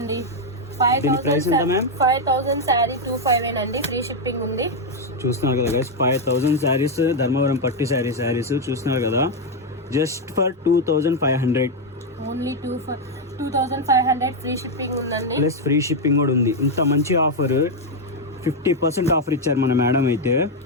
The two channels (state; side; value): normal; both; correlation 0.02